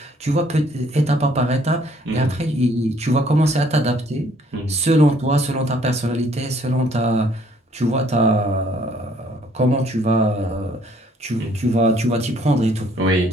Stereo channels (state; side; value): normal; both; correlation 0.63